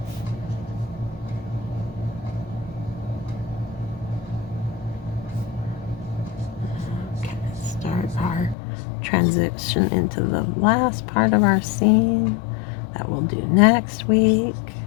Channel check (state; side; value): drops out; right; at 8.6 s